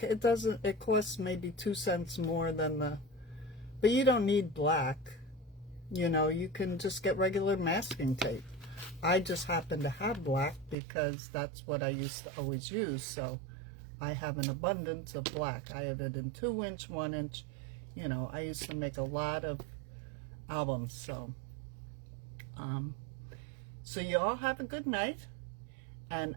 it costs maybe 2 cents more than but you don't need black. You know, you can just get regular masking tape. I just happen to have black because that's what I used to always use. So I have an abundance of black. I have it in 2-inch, 1-inch. You know, I used to make a lot of albums. So, so you all have a good night, and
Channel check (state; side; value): drops out; left; at 10.8 s